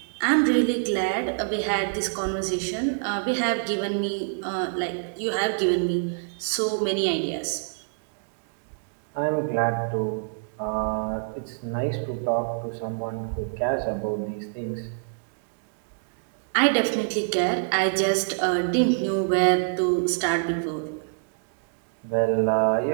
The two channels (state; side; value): silent; left; digital silence